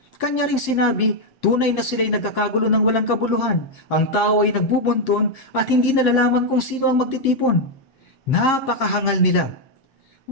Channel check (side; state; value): right; late; 7.6 ms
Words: Kanya ring sinabi, tunay na sila'y nagkakagulo ng walang kabuluhan. Ang tao ay nagbubunton at hindi nalalaman kung sino ang magtitipon. Napakahangal nila.